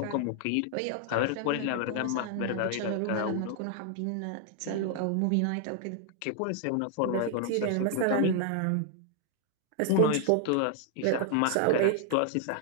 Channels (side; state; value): both; different; correlation 0.00